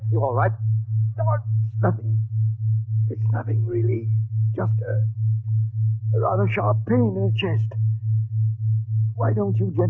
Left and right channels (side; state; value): both; identical; correlation 1.00